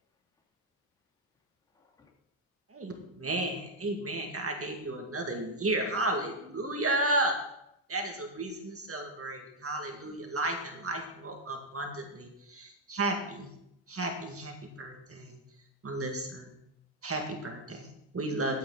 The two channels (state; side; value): normal; both; correlation 0.00